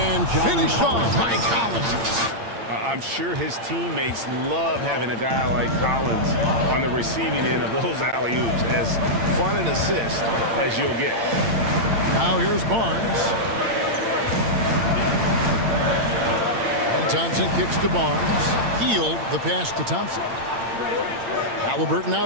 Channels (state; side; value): late; left; 8.8 ms